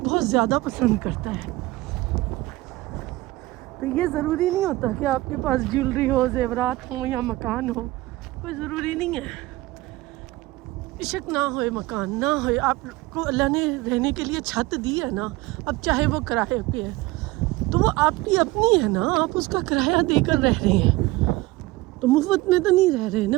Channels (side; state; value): left; quieter; 19.7 dB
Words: بہت زیادہ پسند کرتا ہے. تو یہ ضروری نہیں ہوتا کہ آپ کے پاس جیولری ہو، زیورات ہوں یا مکان ہو. کوئی ضروری نہیں ہے. عشق نہ ہوئے، مکان نہ ہوئے، آپ کو اللہ نے رہنے کے لیے چھت دی ہے نا. اب چاہے وہ کرائے پہ ہے تو وہ آپ کی اپنی ہے نا، آپ اس کا کرایہ دے کر رہ رہے ہیں، تو مفت میں تو نہیں رہ رہے